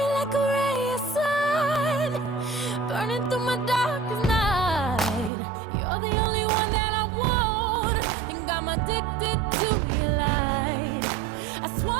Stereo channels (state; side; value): drops out; left; at 5.3 s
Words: like a ray of sun, burning through my darkest night. You're the only one that I want. Think I'm addicted to your light. I